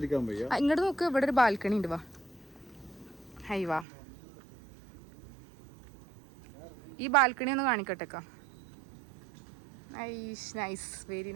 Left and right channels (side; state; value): left; drops out; at 3.9 s